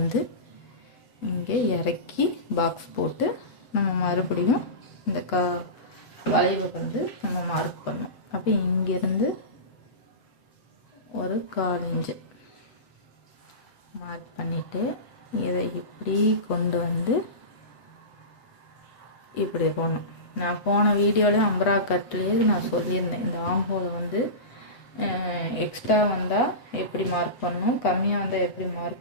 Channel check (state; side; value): late; right; 8.2 ms